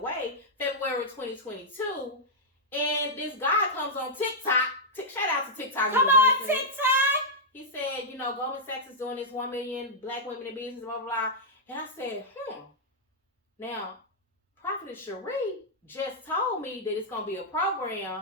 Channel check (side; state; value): both; normal; correlation -0.07